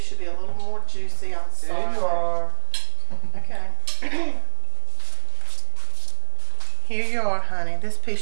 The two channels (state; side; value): silent; left; digital silence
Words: should be a little more juicy. I'm sorry. There you are. Okay. Here you are, honey. This